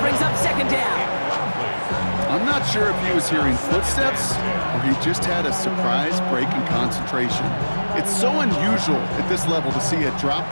brings up second down. I'm not not sure if he was hearing footsteps or he just had a surprise break in concentration. It's so unusual at this level to see a drop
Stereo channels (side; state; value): both; inverted; correlation -1.00